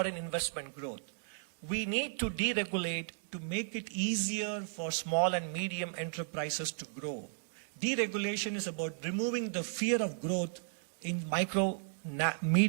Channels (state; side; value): silent; left; digital silence